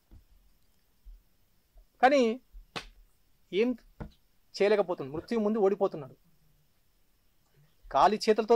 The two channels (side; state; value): both; identical; correlation 1.00